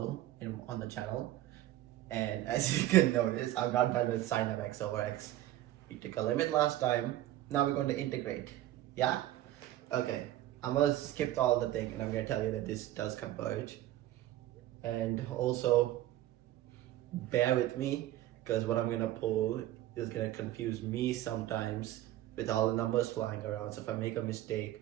on the channel, and as you can notice, I'm not done with sine of x over x. We took a limit last time. Now we're going to integrate. Yeah. Okay. I'm gonna skip all the thing, and I'm gonna tell you that this does converge, and also bear with me because what I'm gonna pull is gonna confuse me sometimes with all the numbers flying around. So if I make a mistake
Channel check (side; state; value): left; quieter; 14.3 dB